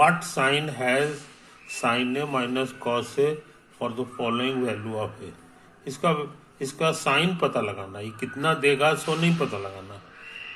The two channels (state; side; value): identical; both; correlation 1.00